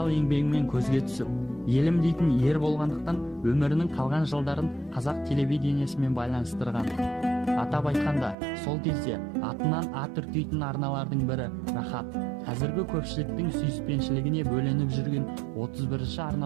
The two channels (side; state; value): left; drops out; at 8.3 s